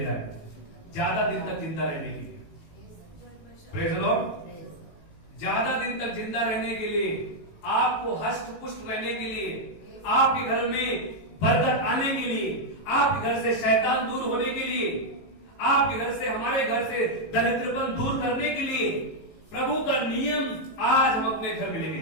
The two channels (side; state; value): right; late; 18 ms